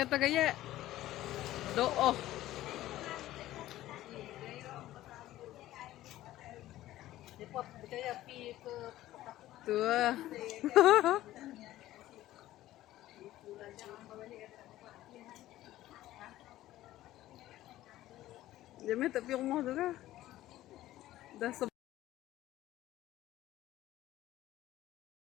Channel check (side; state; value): right; quieter; 14.9 dB